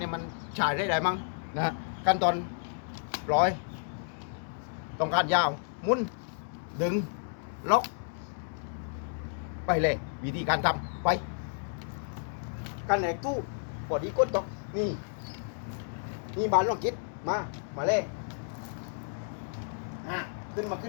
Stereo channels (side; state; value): right; silent; digital silence